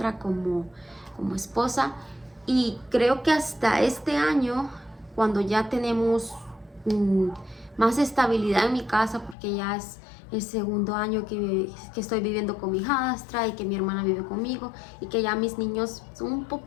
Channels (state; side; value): drops out; right; at 9.3 s